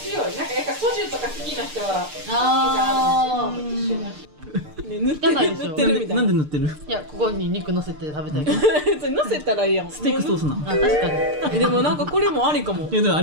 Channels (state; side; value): late; left; 6.7 ms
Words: いなんかやっぱソジュとか好きな人はああ。ね塗って汚いでしょ塗ってるみたいななんで塗ってる？いやここに肉乗せて食べたい。それ乗せたらいいやんステークソースなの。あ確かに。でもなんかこれもありかもいやでもあ